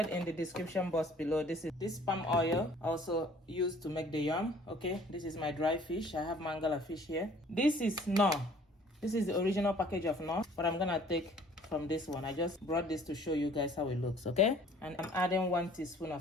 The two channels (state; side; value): normal; both; correlation 0.54